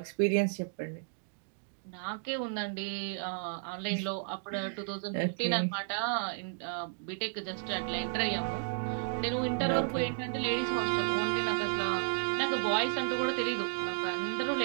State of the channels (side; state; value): left; silent; digital silence